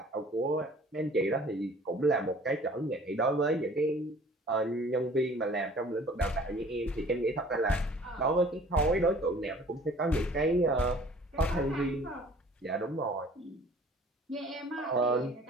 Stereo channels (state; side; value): normal; both; correlation 0.51